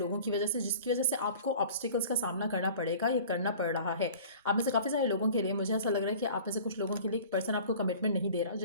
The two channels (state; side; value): inverted; both; correlation -0.44